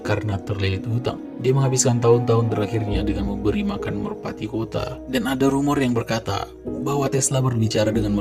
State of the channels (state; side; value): identical; both; correlation 1.00